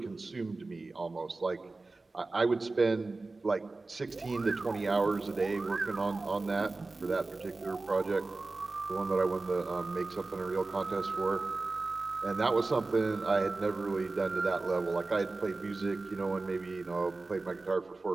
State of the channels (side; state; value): left; quieter; 3.4 dB